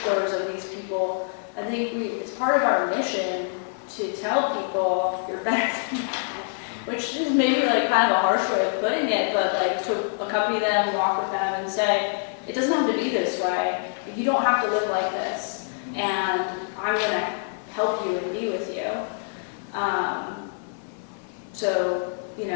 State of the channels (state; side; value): silent; right; 61 dB below the other